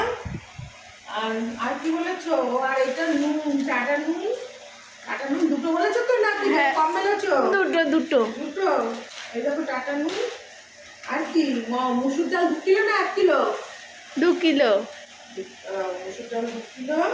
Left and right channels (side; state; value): both; identical; correlation 1.00